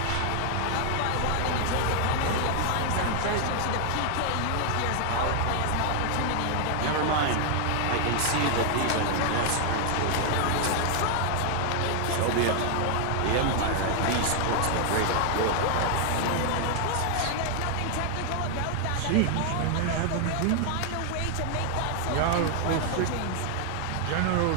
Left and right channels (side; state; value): both; different; correlation 0.00